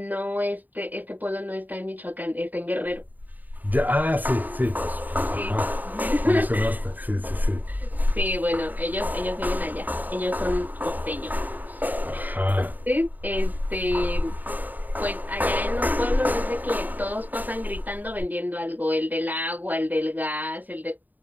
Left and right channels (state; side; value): late; left; 0.085 ms